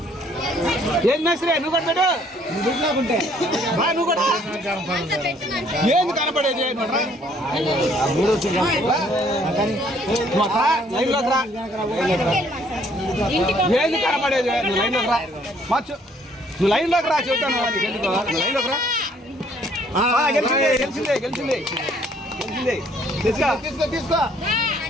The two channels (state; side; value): normal; both; correlation 0.63